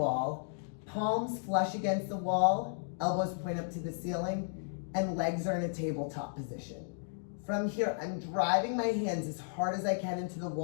palms flush against the wall, elbows point up to the ceiling, and legs are in a tabletop position. From here, I'm driving my hands as hard as I can into the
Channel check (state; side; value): silent; right; digital silence